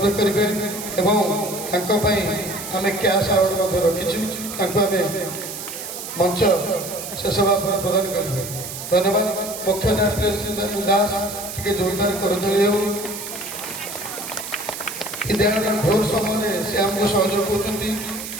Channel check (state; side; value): noise; right; hiss, 8 dB below the sound